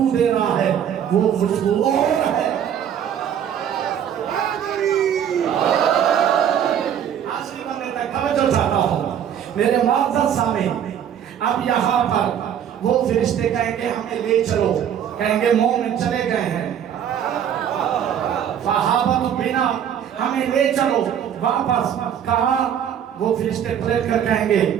دے رہا ہے، وہ خوشبو اور ہے۔ آخری بندے تک توجہ چاہتا ہوں میرے معزز سامعین۔ اب یہاں پر وہ فرشتے کہیں گے ہمیں لے چلو، کہیں گے مومن چلے گئے ہیں، فہابت بنا ہمیں لے چلو واپس۔ کہا وہ فرشتے پلٹ کر کہیں گے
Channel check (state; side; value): quieter; left; 9.2 dB